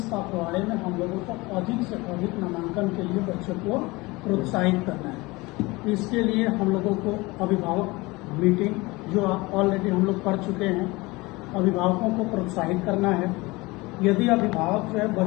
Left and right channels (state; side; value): quieter; right; 22.7 dB